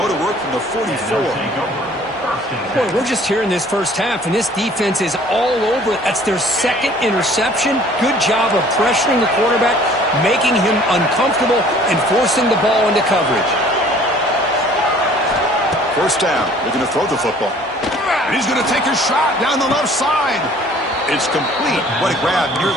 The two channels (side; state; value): both; normal; correlation 0.53